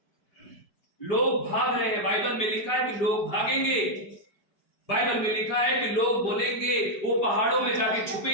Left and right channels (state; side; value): late; right; 4.9 ms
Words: लोग भाग रहे हैं। बाइबल में लिखा है कि लोग भागेंगे। बाइबल में लिखा है कि लोग बोलेंगे, वो पहाड़ों में जाके